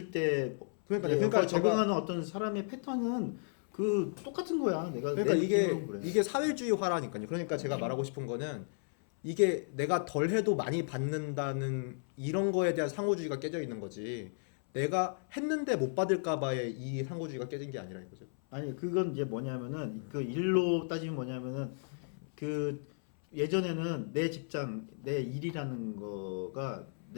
때 그러니까 적응하는 어떤 사람의 패턴은 그 똑같은 거야. 내가 그러니까 내 이게 느낌으로 그래. 이게 사회주의화라니까요. 그러니까 제가 말하고 싶은 거는 이게 내가 덜 해도 많이 받는다는 이런 거에 대한 상호주의가 깨져 있는 거지. 내가 했는데 못 받을까 봐의 이 상호주의가 깨진 게 아니라 이거죠. 아니 그건 이제 뭐냐면은 그 일로 따지면 뭐냐면은 그 예전에는 내 직장 내 일이라는 거가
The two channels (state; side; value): silent; right; 55 dB below the other